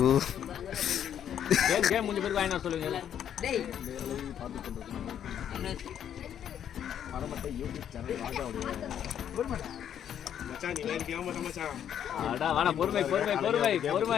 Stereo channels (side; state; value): right; quieter; 9.5 dB